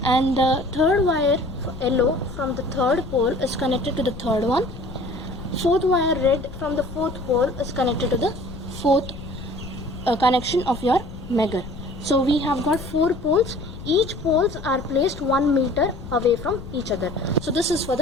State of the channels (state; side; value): noise; left; rumble, 12 dB below the sound